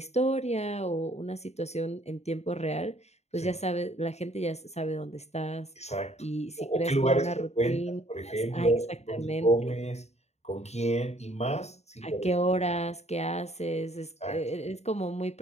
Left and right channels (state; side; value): late; right; 0.32 ms